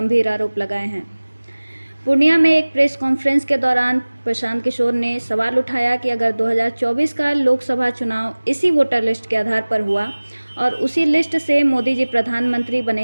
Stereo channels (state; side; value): inverted; both; correlation -1.00